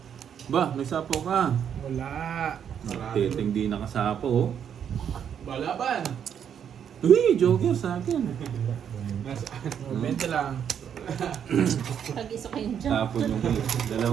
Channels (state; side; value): quieter; left; 8.5 dB